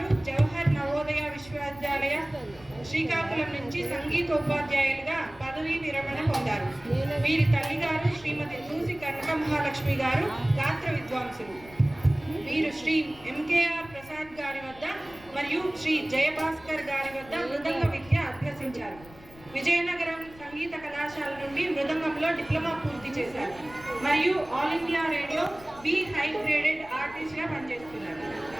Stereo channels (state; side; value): noise; left; rumble, 21 dB below the sound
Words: జవహర్ నవోదయ విశ్వవిద్యాలయ శ్రీకాకుళం నుంచి సంగీతోపాధ్యాయులుగా పదవీ విరమణ పొందారు. వీరి తల్లిగారు శ్రీమతి దూసి కనక మహాలక్ష్మి గారు గాత్ర విద్వాంసులు. వీరు శ్రీ ఎంకేఆర్ ప్రసాద్ గారి వద్ద మరియు శ్రీ జయభాస్కర్ గారి వద్ద మృదంగ విద్య అభ్యసించారు. విజయనగరం సంగీత కళాశాల నుండి మృదంగంలో డిప్లొమా పూర్తి చేశారు మరియు all India radio B high graded ఆర్టిస్ట్గా పనిచేస్తున్నారు.